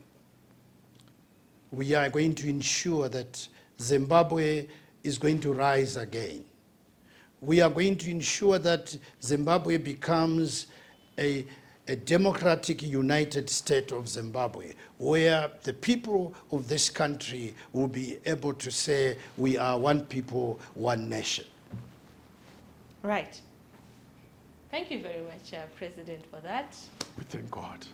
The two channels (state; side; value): identical; both; correlation 1.00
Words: We are going to ensure that Zimbabwe is going to rise again. We are going to ensure that Zimbabwe becomes a democratic united state of Zimbabwe, where the people of this country will be able to say, we are one people, one nation. Right. Thank you very much, President, for that. We thank God.